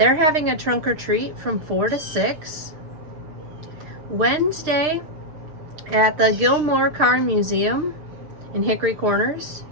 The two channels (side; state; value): left; late; 6.6 ms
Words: having a trunk or treat from 4 to 6. Wednesday at the Gilmore Car Museum in Hickory Corners,